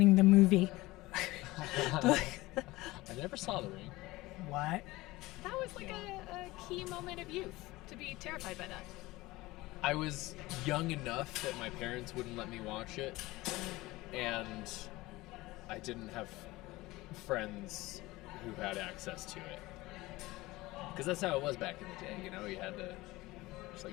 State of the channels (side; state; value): right; quieter; 19.7 dB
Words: the movie. I never saw the ring. What? That was like a key moment of youth to be terrified by that. I was young enough that my parents wouldn't let me watch it, and I didn't have friends who had access to it. Because that's how it was back in the day, you know? You had to just